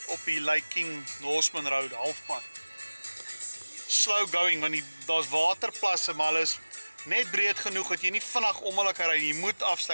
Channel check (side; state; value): both; inverted; correlation -1.00